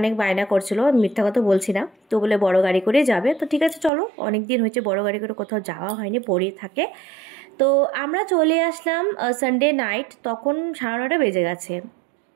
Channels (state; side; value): drops out; left; at 3.9 s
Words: বায়না করছিল, মিথ্যা কথা বলছি না, তো বলে বড় গাড়ি করে যাবে। তো ঠিক আছে চলো, অনেক দিন হয়েছে বড় গাড়ি করে কোথাও যাওয়া হয়নি, পড়ে থাকে। তো আমরা চলে আসলাম সানডে নাইট, তখন 9:30 বেজে গেছে।